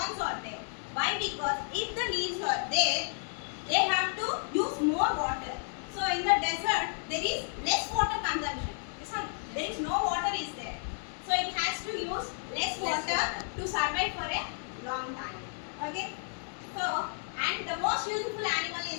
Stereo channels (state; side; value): silent; right; 56 dB below the other